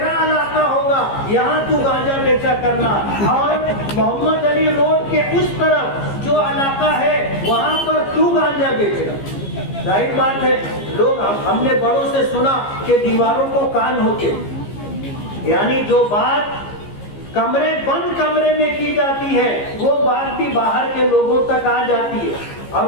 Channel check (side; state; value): right; late; 15 ms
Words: علاقہ ہوگا، یہاں تو گانجا بیچا کرنا، اور محمد علی روڈ کے اس طرف جو علاقہ ہے وہاں پر تو گانجا بیچنا۔ ظاہر بات ہے، لوگ ہم نے بڑوں سے سنا کہ دیواروں کو کان ہوتے، یعنی جو بات بند کمرے میں کی جاتی ہے وہ بات بھی باہر کے لوگوں تک آ جاتی ہے،